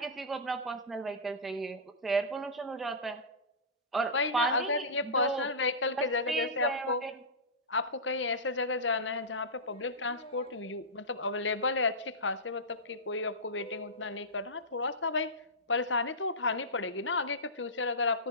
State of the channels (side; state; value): both; normal; correlation -0.16